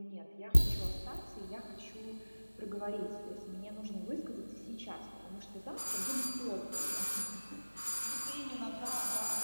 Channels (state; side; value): inverted; both; correlation -1.00